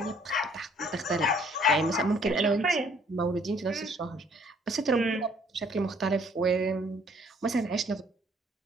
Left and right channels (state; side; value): normal; both; correlation 0.61